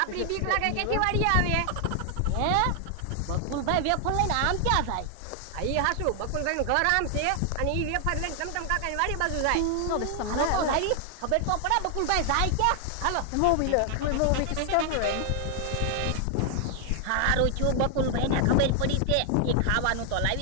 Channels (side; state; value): both; different; correlation 0.00